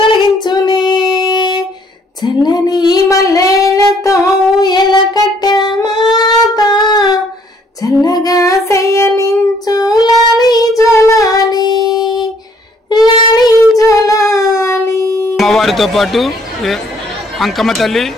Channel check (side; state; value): both; normal; correlation 0.64